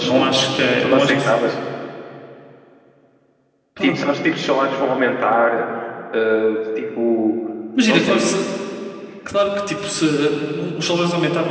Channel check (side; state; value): both; identical; correlation 1.00